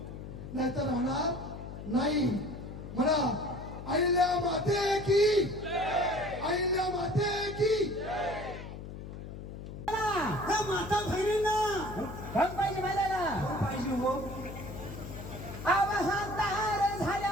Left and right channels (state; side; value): noise; left; hum, 10 dB below the sound